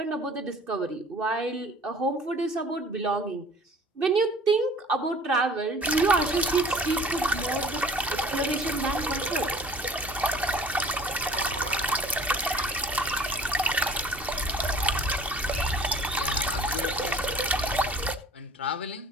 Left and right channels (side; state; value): both; normal; correlation 0.49